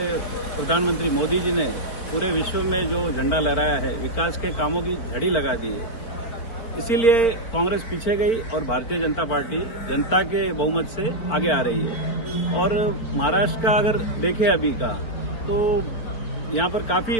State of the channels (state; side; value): late; right; 4.4 ms